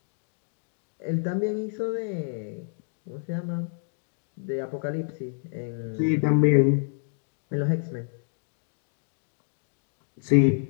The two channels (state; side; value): silent; right; digital silence